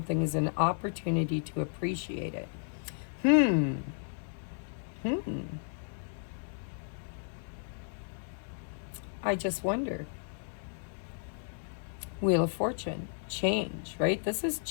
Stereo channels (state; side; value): silent; right; digital silence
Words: is an opportunity to appreciate it. I just wonder. Wheel of Fortune. Change, right? This is